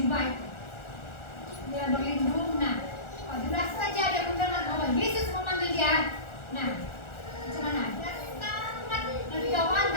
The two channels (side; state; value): right; late; 1.4 ms